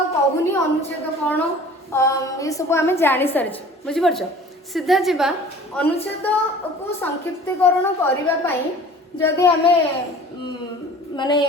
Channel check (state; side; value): normal; both; correlation 0.45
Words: କହୁନି ଅନୁଚ୍ଛେଦ କ'ଣ ଏସବୁ ଆମେ ଜାଣିସାରିଛୁ। ବୁଝିପାରୁଛ ସିଧା ଯିବା ଅନୁଚ୍ଛେଦକୁ ସଂକ୍ଷିପ୍ତୀକରଣ କରିବା ପାଇଁ ଯଦି ଆମେ ମାନେ